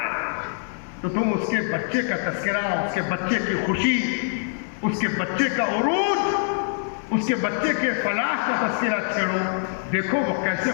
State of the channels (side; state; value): right; silent; digital silence